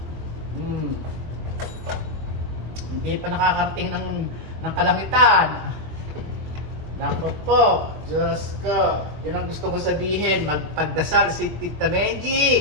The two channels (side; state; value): left; late; 22 ms